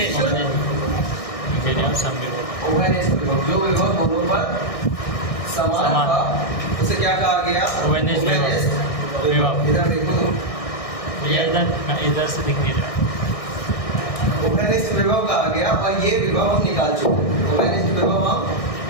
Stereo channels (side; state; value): right; late; 1.6 ms